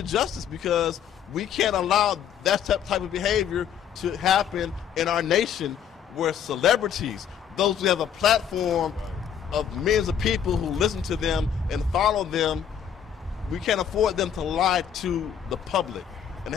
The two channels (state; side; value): quieter; right; 8.7 dB